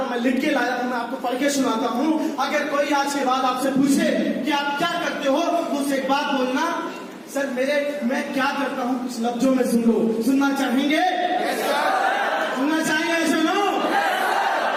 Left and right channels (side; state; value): both; identical; correlation 1.00